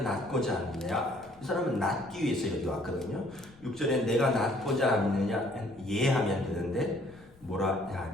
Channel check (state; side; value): noise; left; rumble, 26 dB below the sound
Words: 낫고자 하느냐. 이 사람은 낫기 위해서 여기 왔거든요. 6절에 내가 낫고자 하느냐 예하면 되는데 뭐라